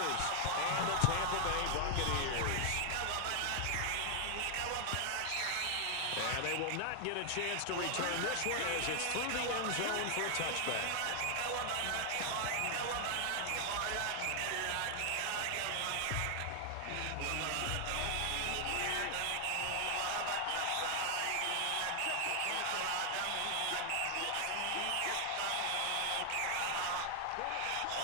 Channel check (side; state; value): both; different; correlation 0.00